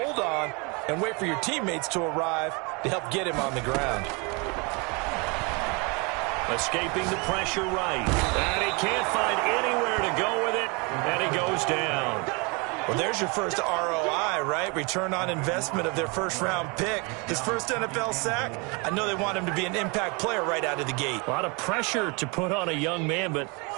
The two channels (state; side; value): quieter; left; 30.1 dB